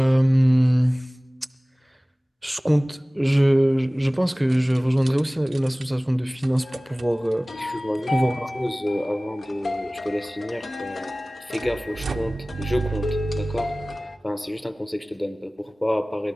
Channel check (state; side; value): normal; both; correlation 0.98